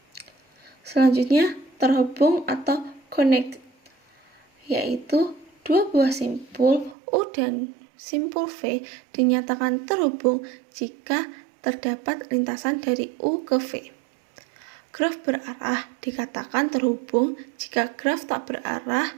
Selanjutnya, terhubung atau connect, yaitu dua buah simpul U dan simpul V dinyatakan terhubung jika terdapat lintasan dari U ke V. Graf berarah dikatakan terhubung jika graf tak berarah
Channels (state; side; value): drops out; left; at 7.0 s